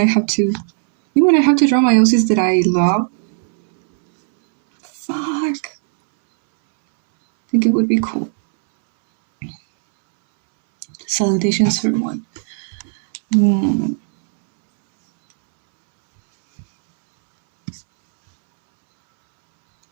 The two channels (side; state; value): left; silent; 69 dB below the other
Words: have to draw my OCs that I love. Fuck. I think it would be cool. Salutations for one.